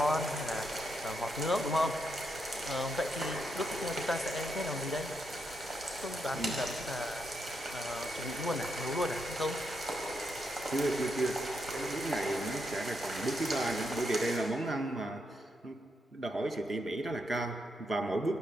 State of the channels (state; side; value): normal; both; correlation 0.81